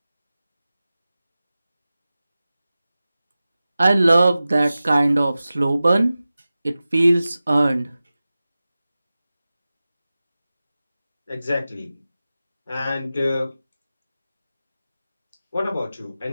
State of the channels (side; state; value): both; inverted; correlation -0.96